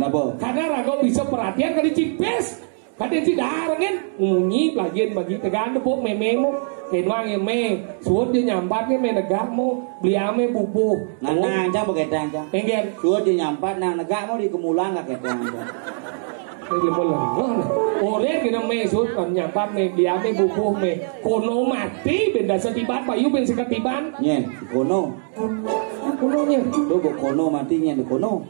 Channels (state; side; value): silent; left; digital silence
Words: Karena rago bisa perhatian kali cipes. Kadang si darang kan ngunyi pelajaran bagi tegan depok mememo kenwang yang me suốt dia nyampat ke me negak mo beli ame bubu Nang cang pakai cang. engger Sudah dia nyampat nang negak mau di kemulan nggak kayak cang. ini boleh oleh kita me suốt kan nyampat me beli ame bubu me kono mati benda setiban payu ben seketiban Nyen, kono. kononya Tuh kono matinya di kono.